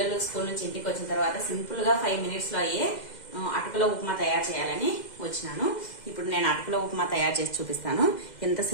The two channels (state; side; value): late; right; 2.0 ms